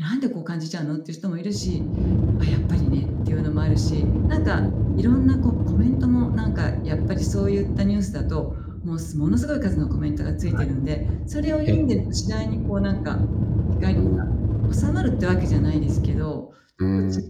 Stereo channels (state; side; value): identical; both; correlation 1.00